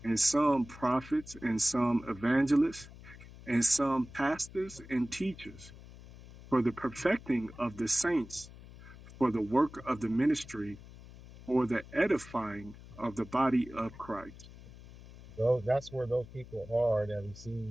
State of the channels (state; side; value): noise; left; hum, 18 dB below the sound